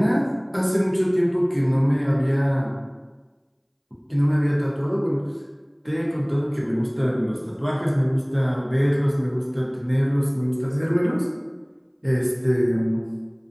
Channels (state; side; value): identical; both; correlation 1.00